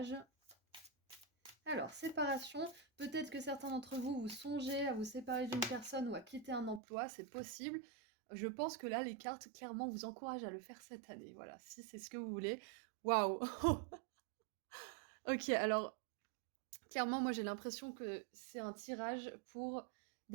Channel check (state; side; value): drops out; left; at 6.8 s